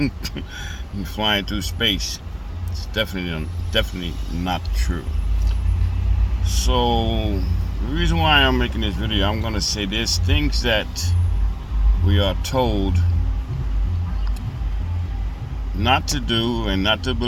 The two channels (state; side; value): identical; both; correlation 1.00